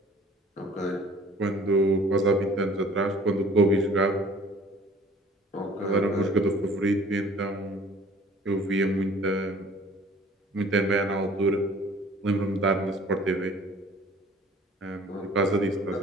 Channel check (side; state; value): both; normal; correlation 0.51